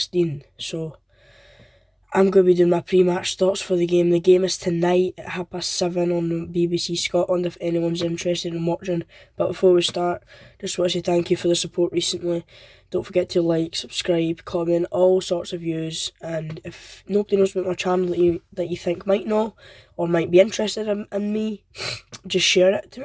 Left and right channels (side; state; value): both; identical; correlation 1.00